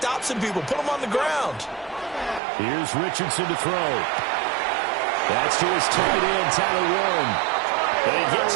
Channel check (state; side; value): drops out; left; at 2.4 s